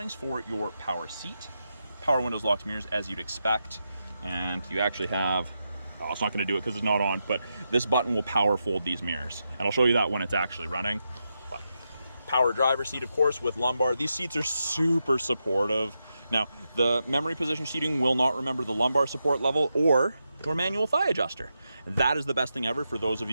for your power seat, power windows, locks, mirrors, as you'd expect. And you actually have, oh, it's not gonna do it because it's not on, but this button will power fold these mirrors. And I'll show you that when it's actually running. But power driver seat, of course, with lumbar. These seats are super supportive. Now, the memory position seating will not remember the lumbar support level or your manual thigh adjuster. That is the best thing ever for those of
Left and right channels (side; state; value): both; inverted; correlation -0.86